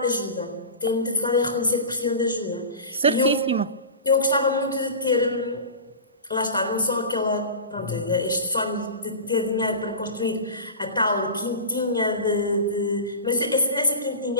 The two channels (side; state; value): both; inverted; correlation -0.31